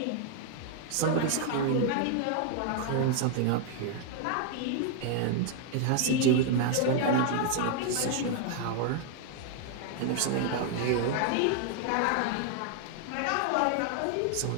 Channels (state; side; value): different; both; correlation 0.00